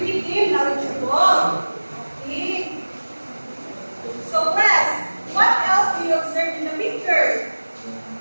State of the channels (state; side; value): inverted; both; correlation -1.00